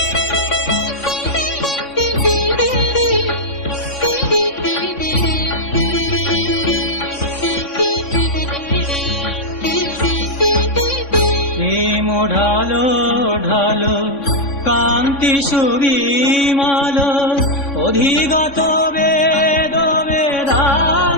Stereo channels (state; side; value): late; right; 3.6 ms